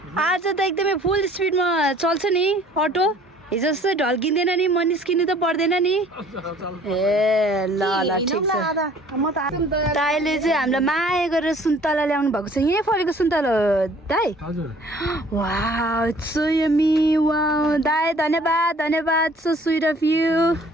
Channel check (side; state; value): both; normal; correlation 0.54